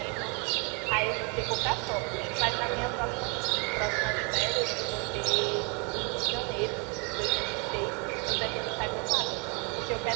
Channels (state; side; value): quieter; left; 33.7 dB